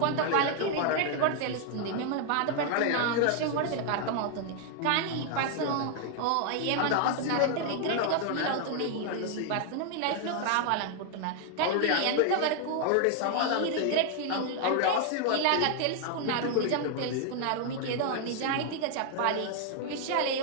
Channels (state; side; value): different; both; correlation 0.00